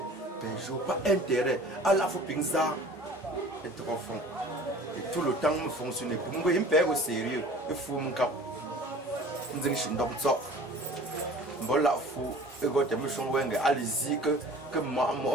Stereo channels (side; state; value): both; normal; correlation 0.45